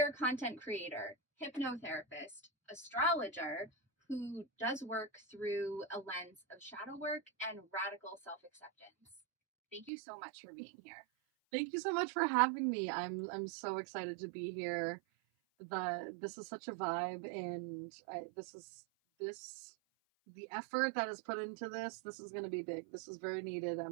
content creator, hypnotherapist, astrologer, who does work through a lens of shadow work and radical self-acceptance. Thank you so much for being here. Thank you so much for having me. I'm so excited to be here. This is such a vibe, and the effort that is put into this. This is going to be big. This is very needed.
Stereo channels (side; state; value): left; drops out; at 9.9 s